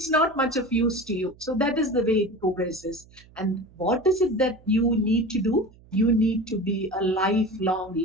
not much of use to you. So that is the way it progresses. And what is it that you need to do? You need to be a lifelong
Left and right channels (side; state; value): right; noise; hum, 26 dB below the sound